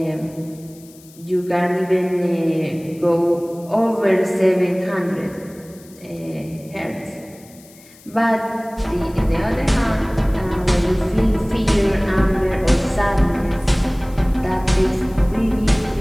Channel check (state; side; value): noise; left; hiss, 24 dB below the sound